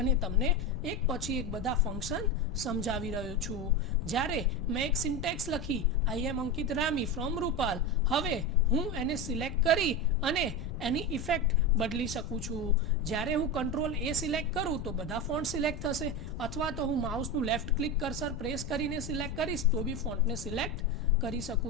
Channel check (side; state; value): left; noise; rumble, 10 dB below the sound